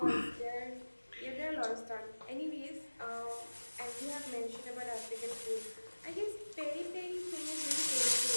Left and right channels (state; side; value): inverted; both; correlation -1.00